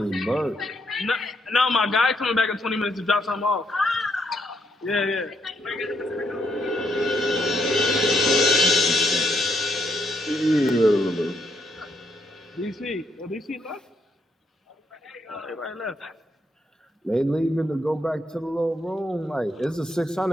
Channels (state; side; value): normal; both; correlation 0.76